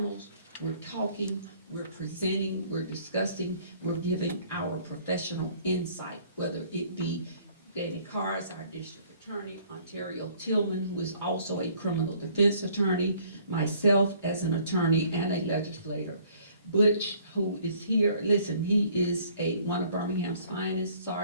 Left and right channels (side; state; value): both; inverted; correlation -0.59